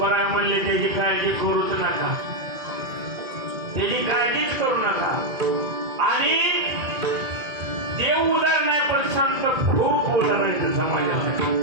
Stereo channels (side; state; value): left; late; 2.0 ms